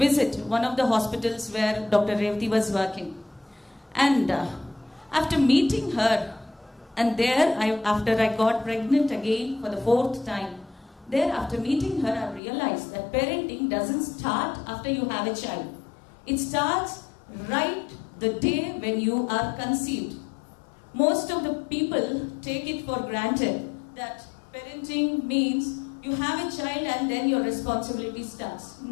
one of the hospitals where Dr. Revati was working, and after meeting her. And there, after I got pregnant again for the 4th time, there after meeting her, I realized that parenting doesn't start after you have a child. It starts right the day when you are conceived. Most of the people take it for granted that parenting means you have a child and then your responsibility starts.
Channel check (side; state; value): right; drops out; at 12.4 s